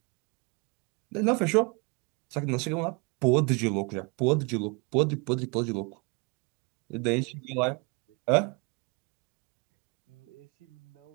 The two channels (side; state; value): left; quieter; 31.3 dB